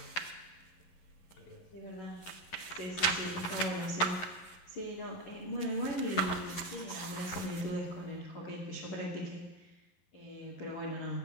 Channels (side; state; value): right; late; 11 ms